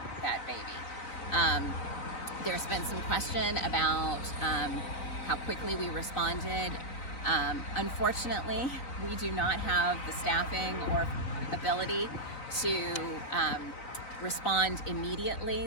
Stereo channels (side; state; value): right; late; 3.9 ms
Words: baby. There's been some question about how quickly we responded. Unfortunately, we do not have the staffing or ability to respond immediately